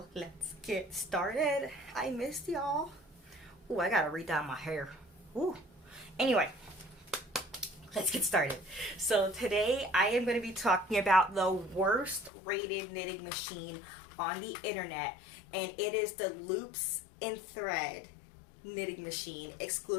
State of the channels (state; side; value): drops out; right; at 12.3 s